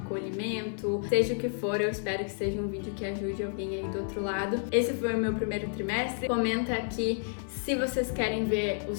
seja o que for. Eu espero que seja um vídeo que ajude alguém aí do outro lado. Esse foi o meu primeiro trimestre. Comenta aqui se vocês querem ver o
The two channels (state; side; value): silent; right; digital silence